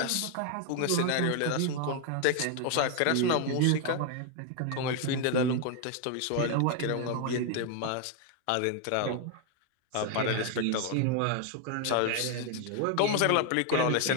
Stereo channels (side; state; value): both; different; correlation 0.01